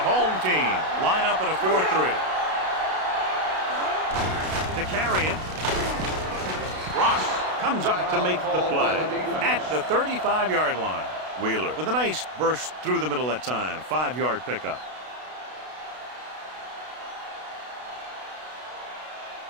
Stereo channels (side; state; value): left; late; 32 ms